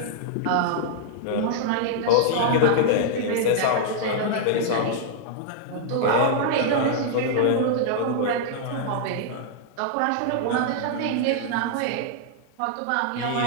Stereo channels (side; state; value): both; different; correlation -0.01